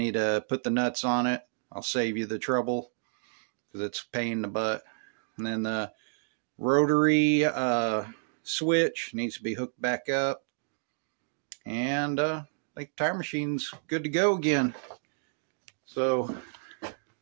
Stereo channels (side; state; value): left; silent; digital silence